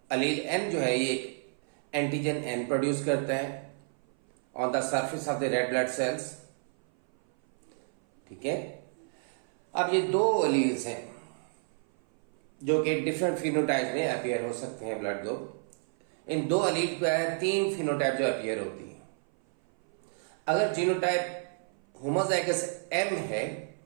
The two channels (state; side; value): silent; left; 56 dB below the other